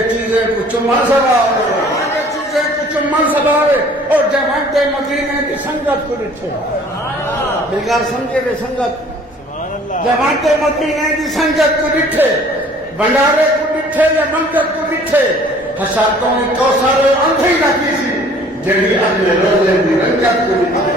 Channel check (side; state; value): both; normal; correlation 0.53